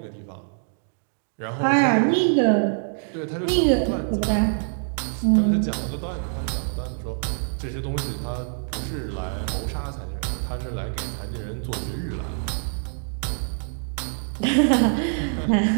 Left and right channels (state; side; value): silent; left; digital silence